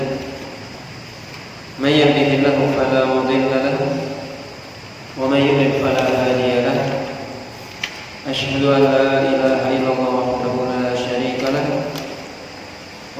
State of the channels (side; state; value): both; identical; correlation 1.00